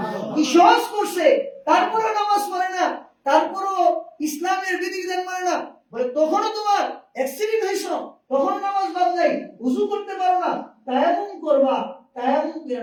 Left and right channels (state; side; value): identical; both; correlation 1.00